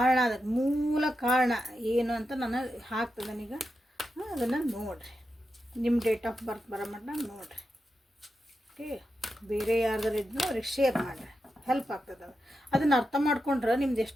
ಅದಕ್ಕೆ ಮೂಲ ಕಾರಣ ಏನು ಅಂತ ನಾನು ಹಾಕ್ತದನೀಗ. ಅದನ್ನು ನೋಡಿರಿ, ನಿಮ್ಮ ಡೇಟ್ ಆಫ್ ಬರ್ತ್ ಬರೋ ಮಟ್ಟ ನೋಡಿರಿ. ಓಕೆ, ಬೇರೆ ಯಾರ್ದಾರು ಇದ್ನೋ ಅವ್ರಿಗೆ ಶೇರ್ ಮಾಡಿರಿ, ಹೆಲ್ಪ್ ಆಗ್ತದೆ. ಅದನ್ನು ಅರ್ಥ ಮಾಡ್ಕೊಂಡ್ರೆ ನಿಮ್ದು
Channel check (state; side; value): normal; both; correlation 0.88